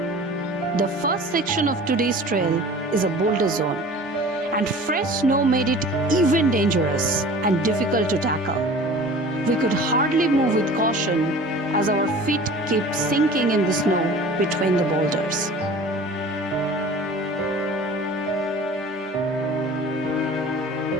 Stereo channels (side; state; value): both; normal; correlation 0.42